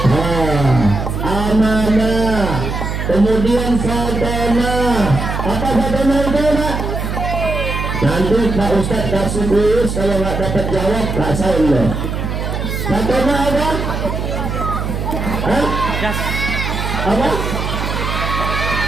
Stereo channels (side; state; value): right; noise; hum, 3 dB below the sound